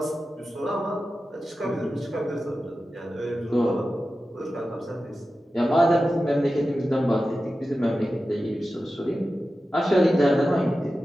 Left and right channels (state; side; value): normal; both; correlation 0.93